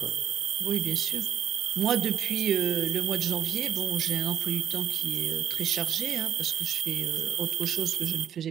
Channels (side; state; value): left; quieter; 9.6 dB